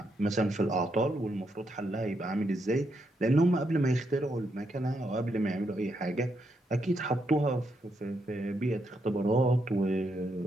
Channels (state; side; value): normal; both; correlation 0.79